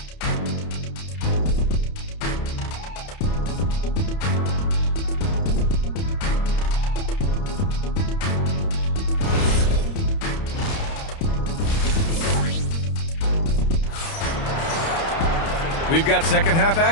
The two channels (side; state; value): right; late; 30 ms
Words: We've got second half